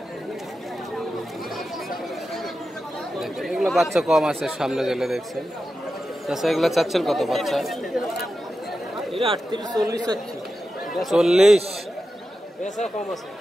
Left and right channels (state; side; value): normal; both; correlation 0.91